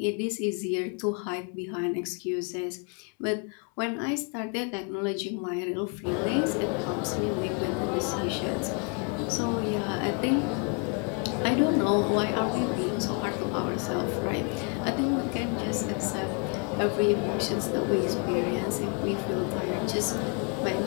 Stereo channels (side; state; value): right; quieter; 36.9 dB